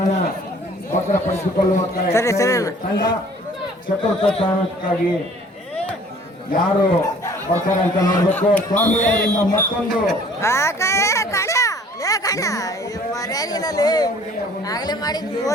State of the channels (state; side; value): normal; both; correlation 0.53